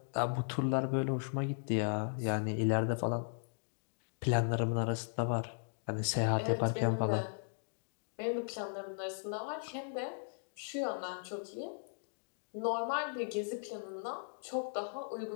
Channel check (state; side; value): silent; right; digital silence